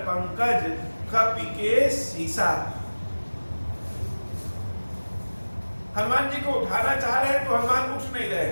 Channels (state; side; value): inverted; both; correlation -1.00